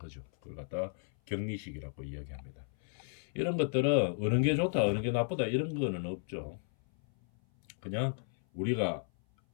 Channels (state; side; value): silent; right; 55 dB below the other